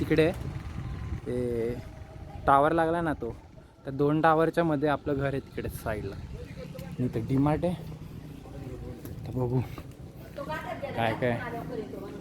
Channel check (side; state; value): both; identical; correlation 1.00